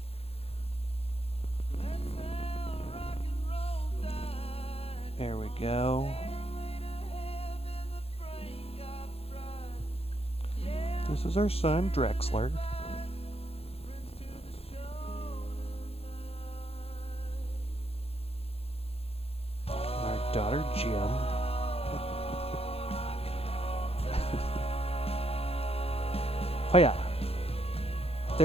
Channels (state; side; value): late; right; 0.29 ms